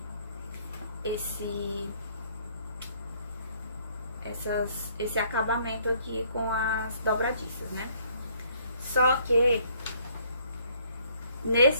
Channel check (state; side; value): inverted; both; correlation -0.63